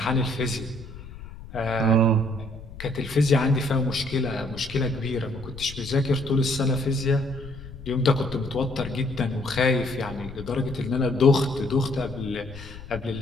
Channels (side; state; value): left; noise; rumble, 14 dB below the sound